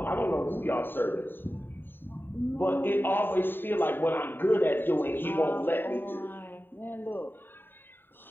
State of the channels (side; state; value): right; late; 0.096 ms